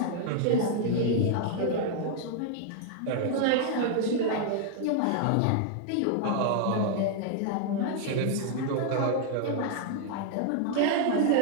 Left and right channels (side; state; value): both; different; correlation 0.00